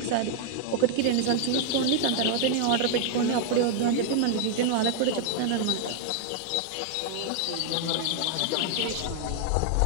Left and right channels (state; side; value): different; both; correlation 0.00